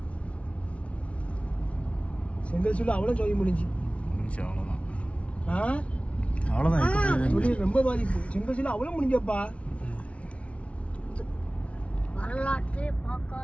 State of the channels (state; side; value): late; right; 0.062 ms